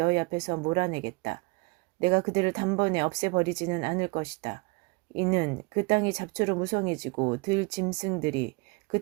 앞에서 몰아내겠다. 내가 그들을 단번에 없애버리지는 않을 것이다. 이는 그 땅이 잡초로 무성해지고 들 짐승들이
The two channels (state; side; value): quieter; left; 27.4 dB